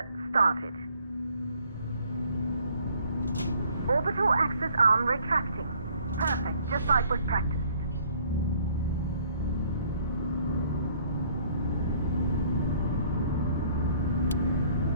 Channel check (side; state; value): both; inverted; correlation -0.60